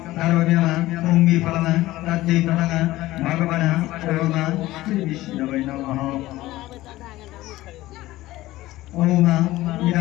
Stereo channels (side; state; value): right; quieter; 17.0 dB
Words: द्रव्यम पुंगीफलम तज्जैतंग भगवान ओम श्री विष्णवे नमः। ओम